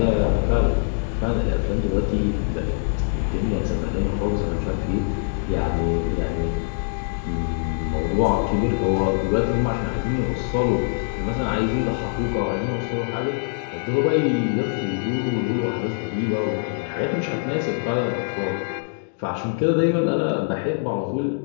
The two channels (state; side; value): silent; right; digital silence